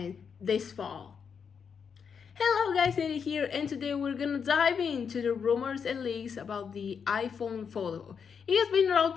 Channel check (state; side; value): quieter; right; 6.6 dB